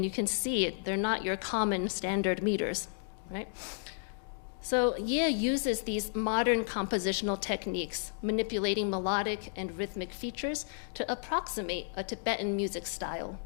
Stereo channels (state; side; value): silent; right; digital silence